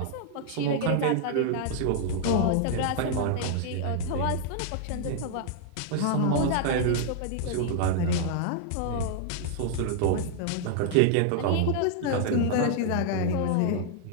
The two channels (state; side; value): different; both; correlation -0.01